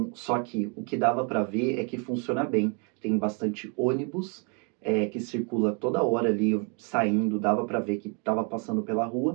só que o que dava para ver é que funciona bem. Tem bastante ônibus que circula toda hora ali saindo, dava para ver que estava passando pela rua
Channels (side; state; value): left; quieter; 36.1 dB